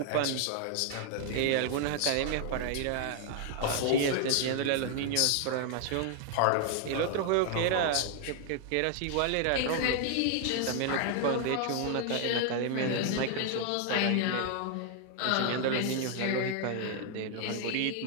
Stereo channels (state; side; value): different; both; correlation 0.00